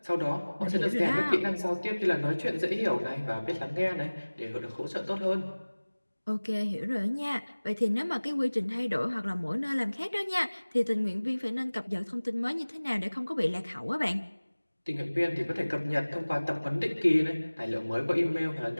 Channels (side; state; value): both; inverted; correlation -1.00